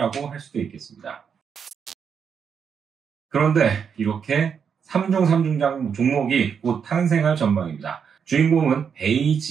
할 수도 있겠습니다. 그런데 이렇게 3중 3중장 종목이 곧 탄생할 전망입니다. 주인공은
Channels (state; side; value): quieter; left; 6.9 dB